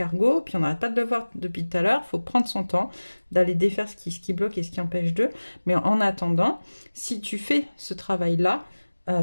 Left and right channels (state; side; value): inverted; both; correlation -1.00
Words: puis on n'arrête pas de le voir depuis tout à l'heure. Il faut prendre son temps d'aller défaire ce qui bloque et ce qui empêche d'eux. Mais en attendant, si tu fais ce travail-là,